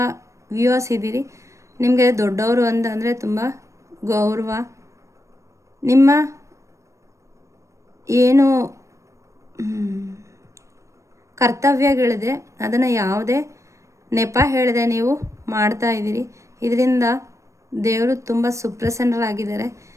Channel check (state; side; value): late; left; 0.15 ms